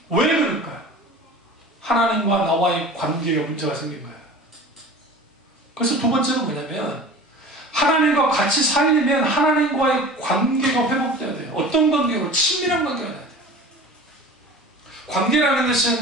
왜 그럴까요? 하나님과 나와의 관계에 문제가 생긴 거예요. 그래서 두 번째는 뭐냐면, 하나님과 같이 살려면 하나님과의 관계가 회복돼야 돼요. 어떤 관계로? 친밀한 관계가 돼야 돼요. 관계라는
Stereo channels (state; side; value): normal; both; correlation 0.39